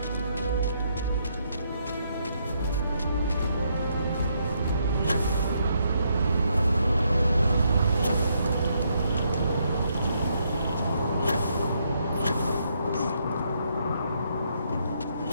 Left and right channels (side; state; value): both; inverted; correlation -0.75